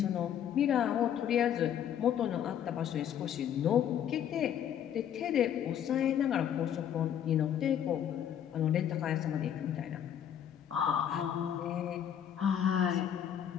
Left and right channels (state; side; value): quieter; right; 9.6 dB